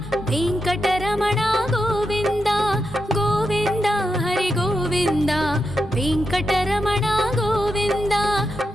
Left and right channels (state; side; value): normal; both; correlation 0.86